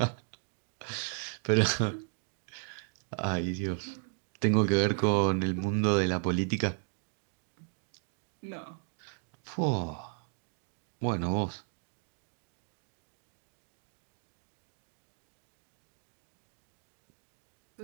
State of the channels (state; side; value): silent; left; 54 dB below the other